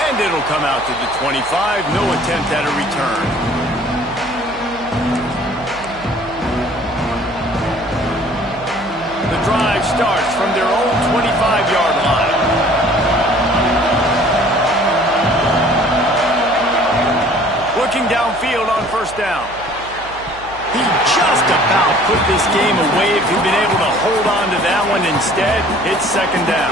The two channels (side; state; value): right; noise; hum, 19 dB below the sound